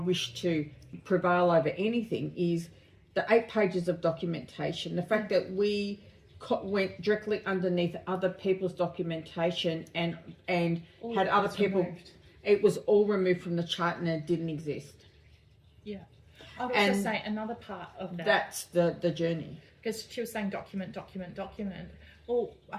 to prevail over anything is the 8 pages of documentation. The fact that we went directly underneath other people's documentation and had other people. Removed. It was all removed from the chart and it didn't exist. Yeah. I would also say another part of that. That's the journey. Because she was saying document. Well, I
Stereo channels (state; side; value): identical; both; correlation 1.00